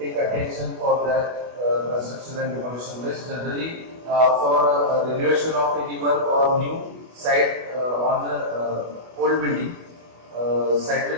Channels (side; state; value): left; late; 25 ms